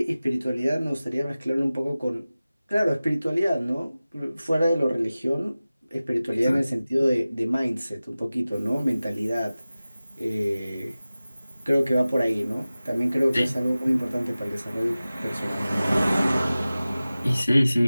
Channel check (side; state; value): both; inverted; correlation -0.97